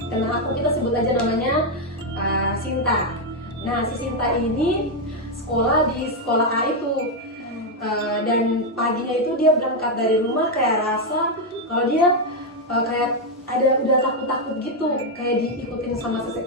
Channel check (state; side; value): normal; both; correlation 0.03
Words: teman aku, kita sebut aja namanya Sinta. Nah, si Sinta ini sekolah di sekolah A itu. Dan paginya itu dia berangkat dari rumah kayak rasa kalau dia kayak udah takut-takut gitu, kayak diikutin sama